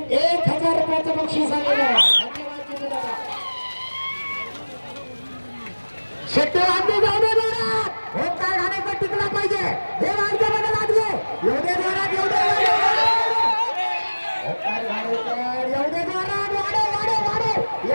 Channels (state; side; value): inverted; both; correlation -1.00